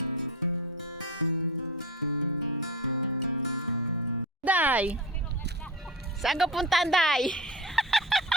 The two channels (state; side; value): normal; both; correlation 0.26